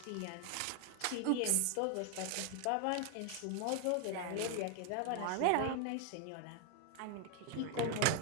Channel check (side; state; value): both; different; correlation 0.00